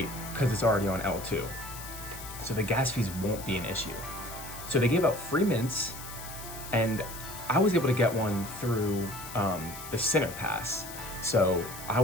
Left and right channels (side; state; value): left; noise; hiss, 12 dB below the sound